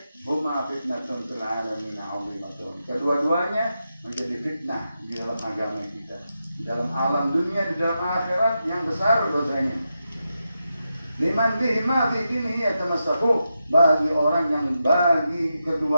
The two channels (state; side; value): inverted; both; correlation -0.87